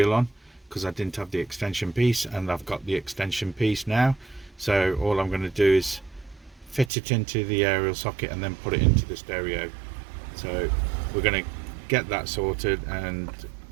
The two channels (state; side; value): drops out; left; at 6.9 s